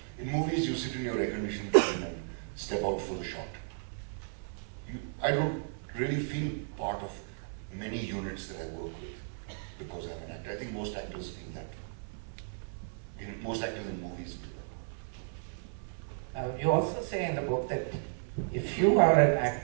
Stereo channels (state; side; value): silent; left; 55 dB below the other